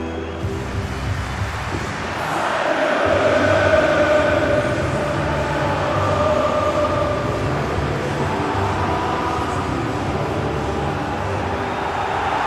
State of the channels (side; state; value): both; identical; correlation 1.00